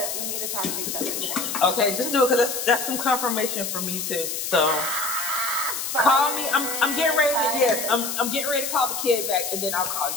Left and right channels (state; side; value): noise; left; hiss, 3 dB below the sound